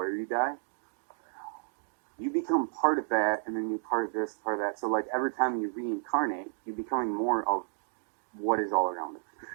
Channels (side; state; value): left; silent; digital silence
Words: you die, you become part of that, and then you part of this, part of that. So like every time you reincarnate, you're becoming more of what is all around us.